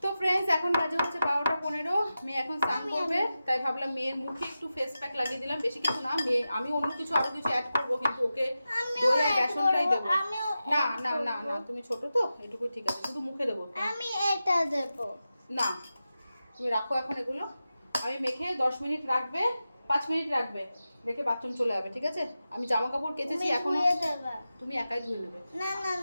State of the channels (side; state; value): both; inverted; correlation -0.92